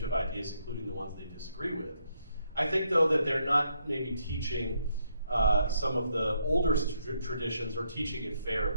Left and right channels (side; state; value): both; inverted; correlation -0.75